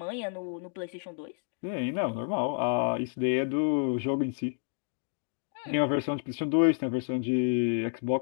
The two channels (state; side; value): silent; right; digital silence